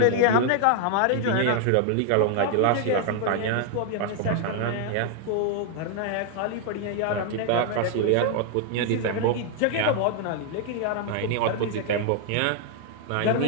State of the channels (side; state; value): both; different; correlation 0.00